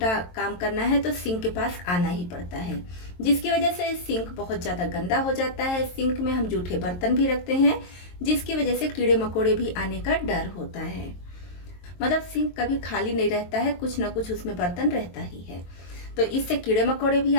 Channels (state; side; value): late; right; 22 ms